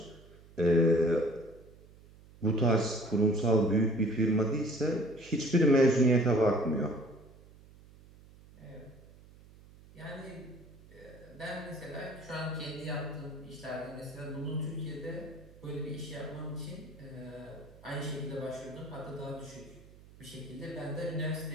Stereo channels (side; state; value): right; noise; hum, 22 dB below the sound